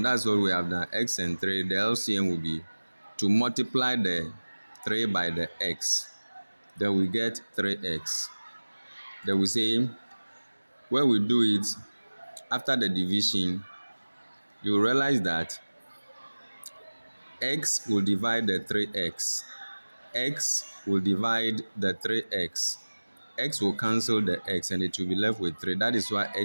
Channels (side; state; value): both; inverted; correlation -1.00